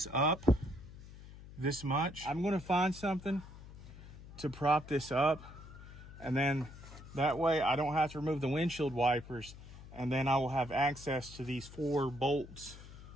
up this much. I'm going to find something to prop this up, and then that way I don't have to remove the windshield wipers, and then I will have access to these 4 bolts,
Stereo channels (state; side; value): noise; left; hum, 16 dB below the sound